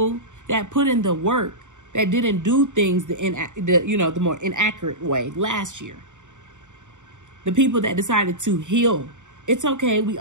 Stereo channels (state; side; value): late; left; 0.85 ms